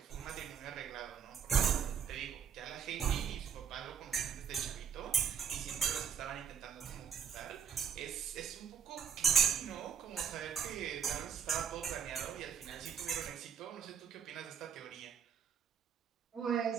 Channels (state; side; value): quieter; left; 7.5 dB